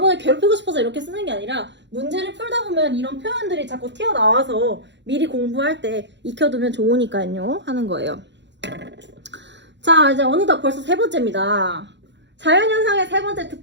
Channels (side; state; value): left; late; 0.52 ms